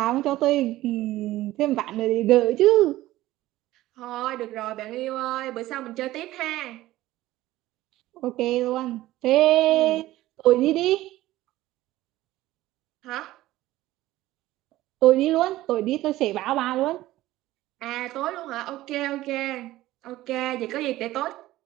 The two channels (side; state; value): left; quieter; 16.1 dB